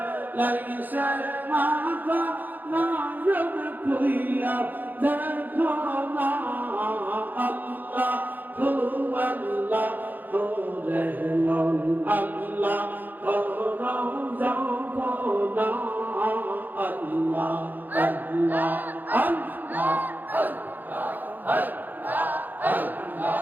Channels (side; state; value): left; late; 0.086 ms